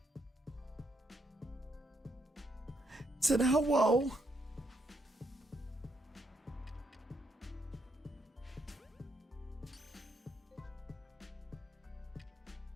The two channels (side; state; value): both; normal; correlation 0.76